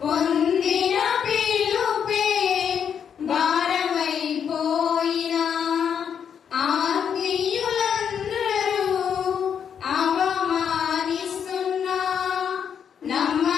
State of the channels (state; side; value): quieter; right; 7.8 dB